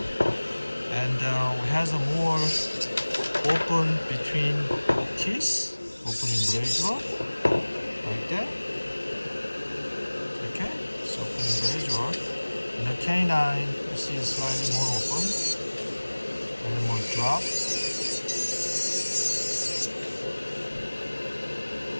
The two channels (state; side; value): inverted; both; correlation -1.00